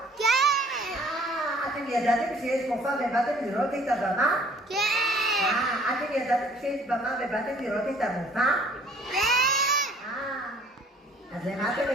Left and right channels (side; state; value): both; normal; correlation 0.57